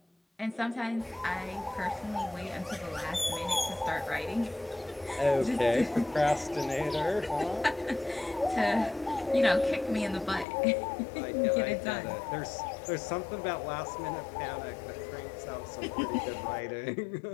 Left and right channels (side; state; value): right; drops out; at 10.5 s